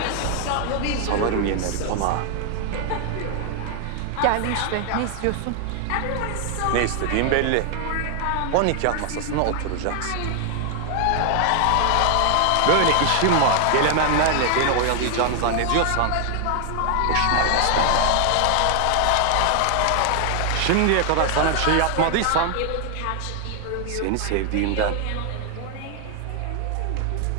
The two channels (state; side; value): different; both; correlation 0.00